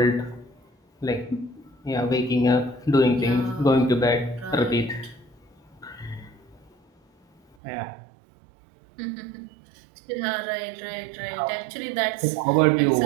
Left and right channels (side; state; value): left; drops out; at 7.6 s